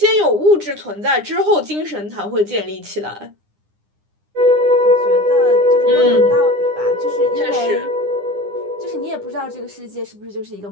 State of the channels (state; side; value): late; left; 9.9 ms